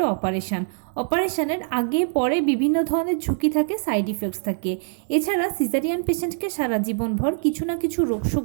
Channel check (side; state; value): left; silent; digital silence